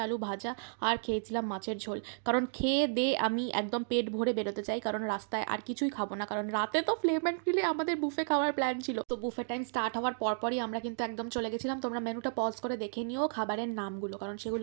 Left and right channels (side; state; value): left; silent; digital silence